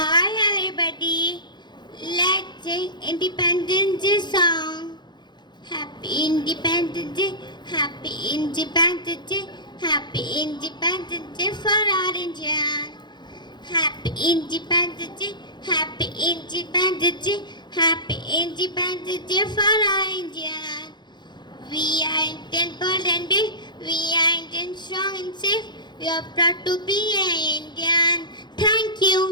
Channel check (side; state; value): right; late; 0.21 ms